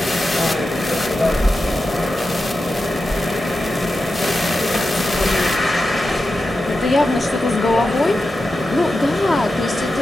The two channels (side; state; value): both; normal; correlation 0.90